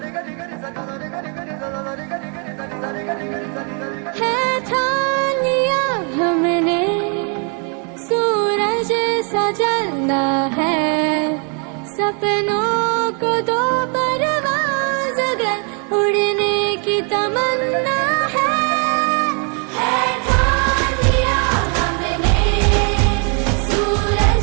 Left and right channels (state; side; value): quieter; left; 38.7 dB